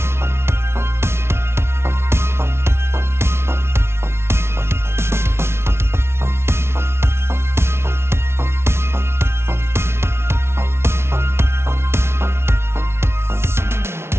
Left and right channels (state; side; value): late; left; 0.12 ms